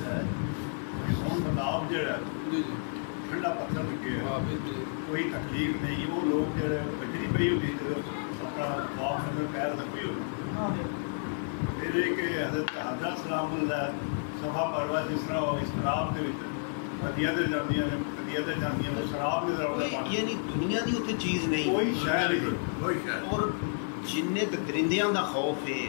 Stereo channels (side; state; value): right; silent; 57 dB below the other